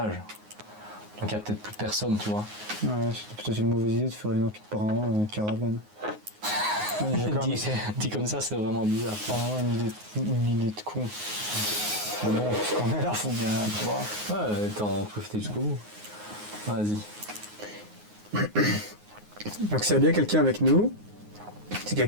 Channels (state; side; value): late; left; 9.5 ms